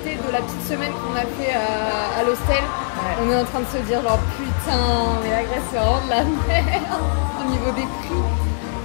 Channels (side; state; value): right; silent; digital silence